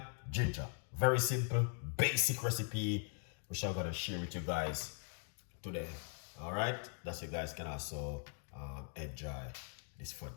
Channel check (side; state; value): right; silent; 51 dB below the other